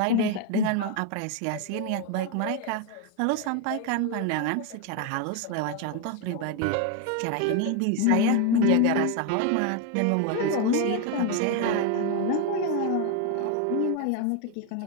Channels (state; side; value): different; both; correlation 0.01